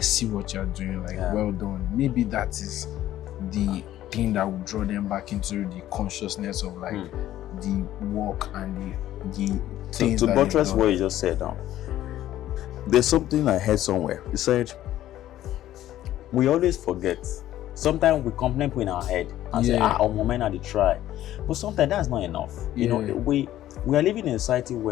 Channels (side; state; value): right; quieter; 13.3 dB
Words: see what you're doing, like, well done. Maybe that is the thing that will draw them back into the consciousness of like the work and the things. To buttress what you just said now, there's something I heard somewhere. You said we always forget. Sometimes we complain in our head and say, our moment are the try. But sometimes that's not enough. We are living in a society